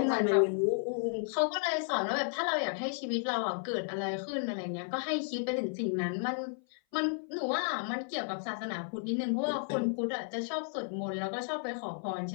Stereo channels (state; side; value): silent; right; 56 dB below the other